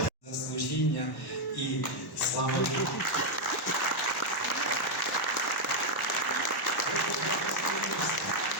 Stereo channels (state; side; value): normal; both; correlation 0.00